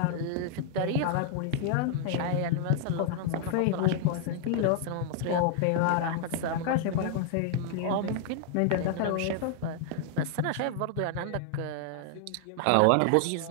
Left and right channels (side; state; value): both; different; correlation 0.00